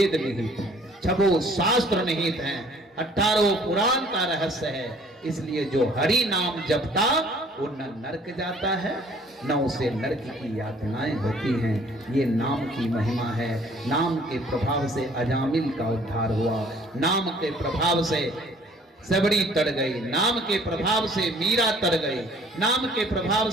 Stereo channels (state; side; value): normal; both; correlation 0.56